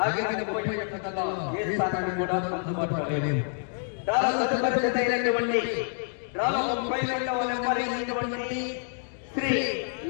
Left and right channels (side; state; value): right; silent; 60 dB below the other